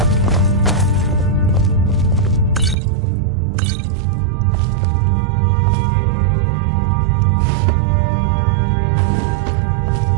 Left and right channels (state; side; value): drops out; left; at 2.8 s